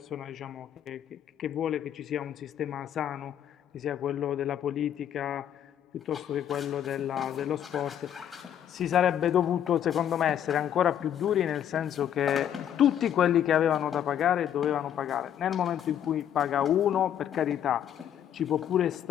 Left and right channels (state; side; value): quieter; right; 10.0 dB